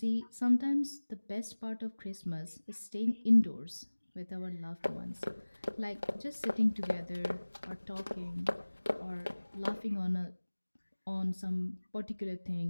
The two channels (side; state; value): both; inverted; correlation -1.00